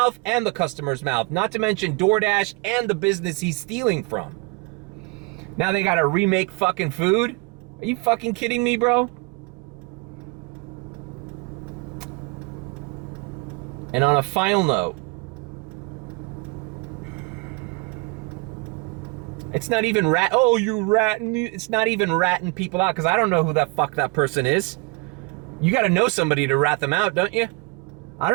and the customer's mouth. Not to mention DoorDash and the business he's stealing from. Now they gotta remake fucking food? Are you fucking kidding me, bro? And on a final note, it's not even it's not even ratting people out, because I don't know who the fuck that person is. You gotta know somebody to rat them out, don't you? I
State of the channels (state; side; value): quieter; left; 27.9 dB